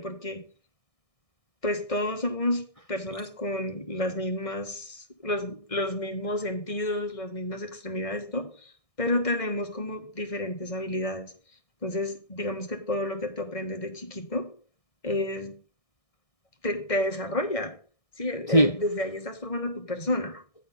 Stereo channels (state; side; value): late; right; 1.6 ms